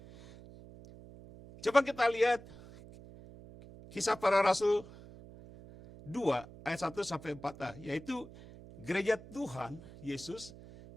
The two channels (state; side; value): noise; right; hum, 18 dB below the sound